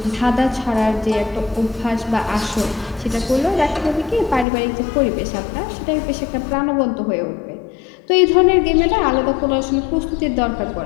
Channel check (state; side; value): drops out; right; at 4.5 s